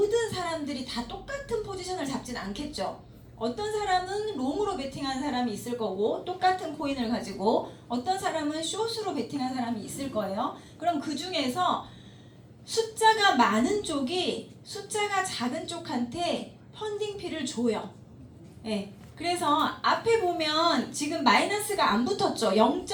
사람들이 다 똑같은 포지션을 잡진 않겠죠. 어떤 사람은 롱으로 베팅한 사람이 있을 거고 똑같은 코인을 가지고 어떤 사람은 숏으로 베팅한 사람이 있을 거예요. 그럼 그 중에서 숫자가 많은 쪽이 숫자가 작은 쪽한테 펀딩피를 줘요. 네. 그래서 앞에 보면 지금 마이너스가 안 붙었죠.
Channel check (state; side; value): identical; both; correlation 1.00